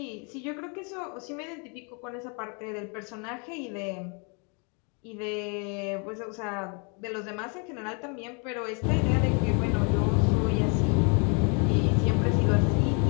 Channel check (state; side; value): quieter; right; 35.8 dB